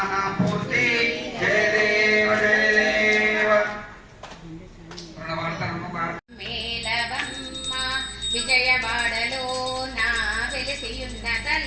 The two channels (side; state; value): both; identical; correlation 1.00